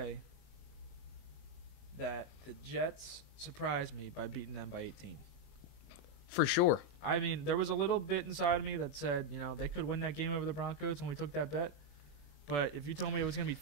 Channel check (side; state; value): right; late; 21 ms